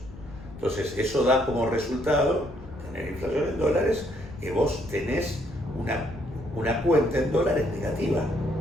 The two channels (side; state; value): left; noise; rumble, 16 dB below the sound